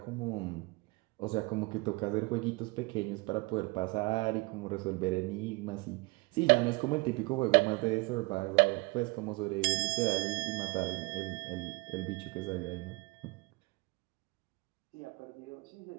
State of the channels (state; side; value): quieter; left; 26.3 dB